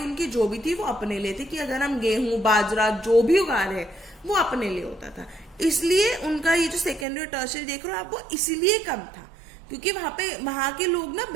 जो भी थी वो अपने लिए थी, कि अगर हम गेहूं बाजरा जो भी उगा रहे वो अपने लिए होता था. इसलिए उनका ये जो सेकेंडरी और टर्शियरी देख रहे हो आप, वो इसीलिए कम था क्योंकि वहां के लोग ना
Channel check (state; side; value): drops out; left; at 7.1 s